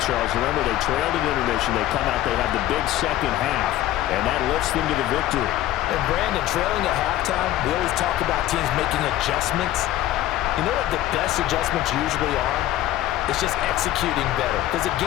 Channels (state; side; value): quieter; right; 14.0 dB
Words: Remember, they trailed at intermission. They come out, they have the big second half, and that lifts them to the victory. And Brandon, trailing at halftime, we always talk about teams making adjustments. You know what the best adjustments usually are? It's just executing better. Because the